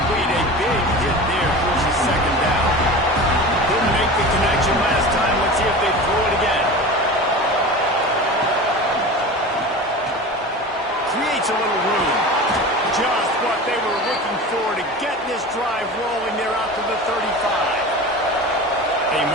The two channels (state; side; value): normal; both; correlation 0.33